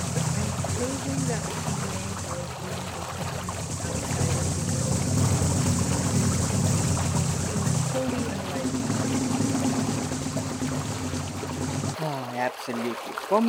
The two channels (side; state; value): both; identical; correlation 1.00